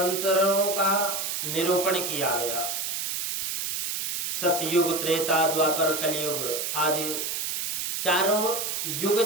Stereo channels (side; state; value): right; noise; hiss, 2 dB below the sound